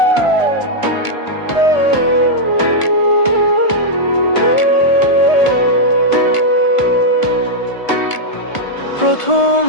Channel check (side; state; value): right; late; 1.5 ms